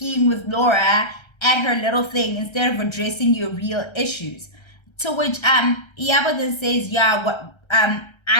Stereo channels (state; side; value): late; right; 1.3 ms